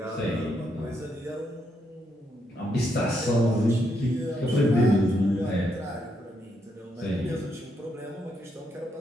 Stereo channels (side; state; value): both; normal; correlation 0.78